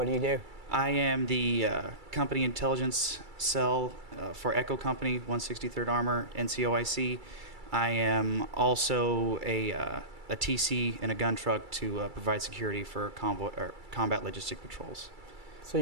do you do? I am the company intelligence cell for Echo Company, 163rd Armor, NCOIC. I am also a TC in a gun truck to provide security for combat logistic patrols. So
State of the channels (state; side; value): late; left; 2.3 ms